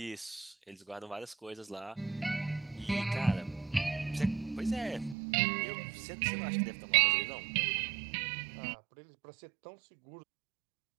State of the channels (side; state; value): left; drops out; at 5.2 s